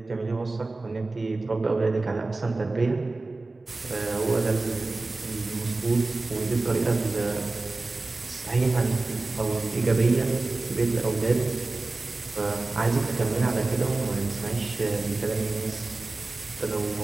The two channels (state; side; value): quieter; left; 3.3 dB